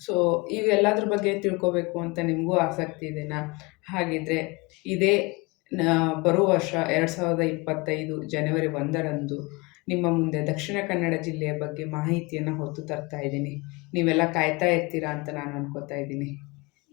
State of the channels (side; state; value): right; quieter; 26.3 dB